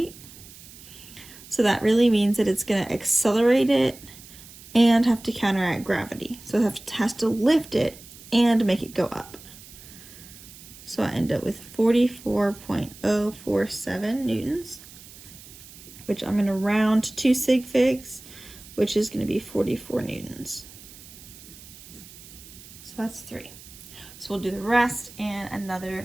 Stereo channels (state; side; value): noise; right; hiss, 19 dB below the sound